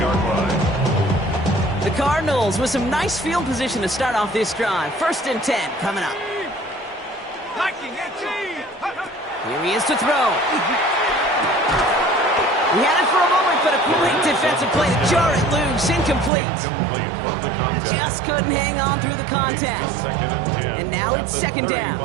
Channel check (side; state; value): left; drops out; at 16.3 s